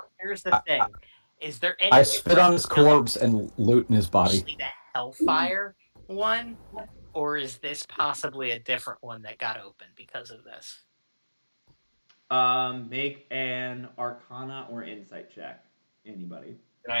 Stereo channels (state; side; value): inverted; both; correlation -1.00